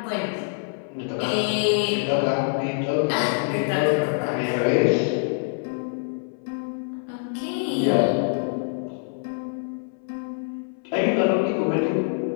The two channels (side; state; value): right; silent; 62 dB below the other